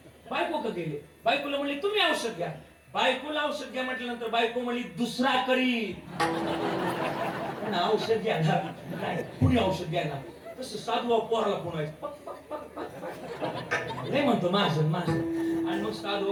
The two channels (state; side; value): identical; both; correlation 1.00